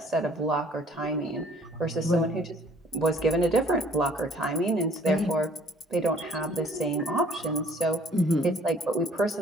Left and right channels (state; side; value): normal; both; correlation 0.57